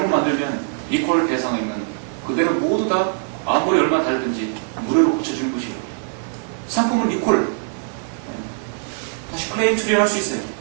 만들면 리콜 대상이면 그대로 모두 다 아무리 얼마 다르든지 무료로 고쳐주는 것이에요. 상품은 리콜, 다시 클레임 처리할 수 있어요.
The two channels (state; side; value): silent; left; 65 dB below the other